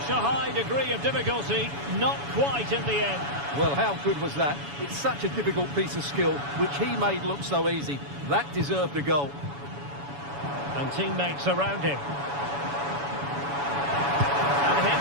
a high degree of difficulty, not quite in the end. Well, how good was that? It's such a difficult piece of skill, which he made look so easy. That deserved a goal. And teammates around him. And hit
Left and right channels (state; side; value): late; left; 7.1 ms